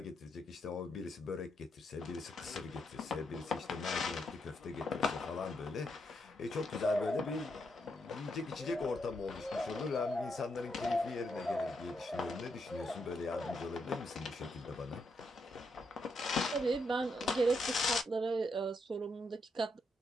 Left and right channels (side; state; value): both; normal; correlation 0.80